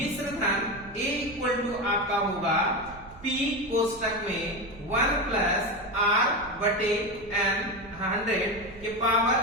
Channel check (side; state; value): right; noise; rumble, 20 dB below the sound